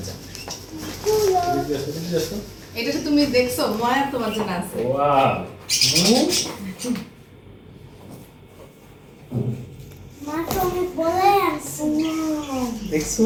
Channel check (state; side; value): identical; both; correlation 1.00